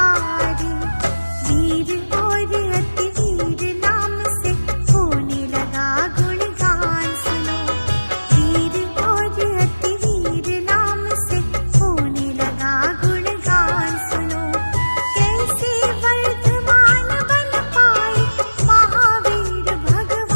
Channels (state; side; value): inverted; both; correlation -1.00